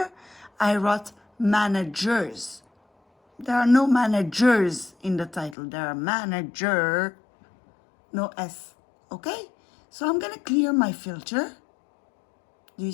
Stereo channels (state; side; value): drops out; right; at 5.6 s